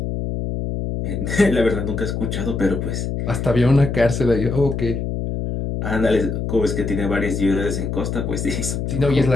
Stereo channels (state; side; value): noise; left; hum, 3 dB below the sound